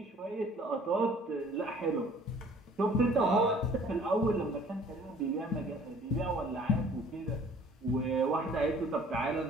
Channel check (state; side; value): normal; both; correlation 0.53